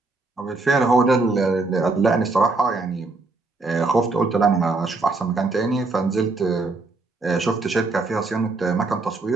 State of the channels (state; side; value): quieter; left; 3.5 dB